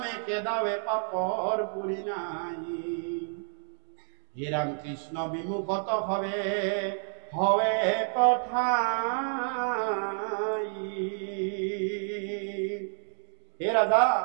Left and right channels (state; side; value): silent; left; 57 dB below the other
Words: কেদাবে পাপৰ পুৰি নাই হে ৰাম কৃষ্ণ বিমুখত হবে হবে কথাই হে ৰাজা